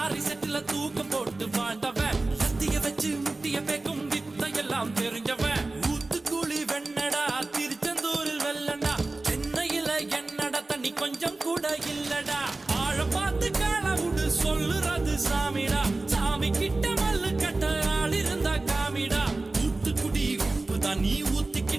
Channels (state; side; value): quieter; left; 3.2 dB